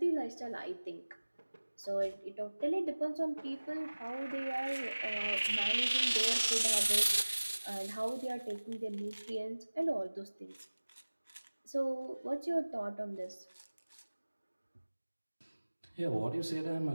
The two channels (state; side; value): inverted; both; correlation -1.00